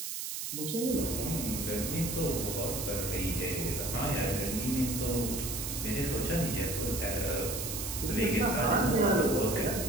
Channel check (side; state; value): right; noise; hiss, 4 dB below the sound